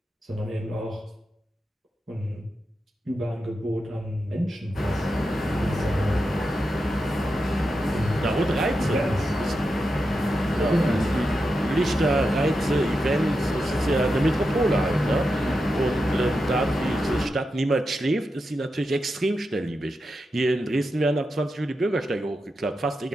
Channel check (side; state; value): both; normal; correlation 0.88